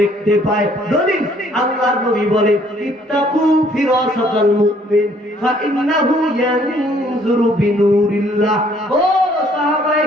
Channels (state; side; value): normal; both; correlation 0.62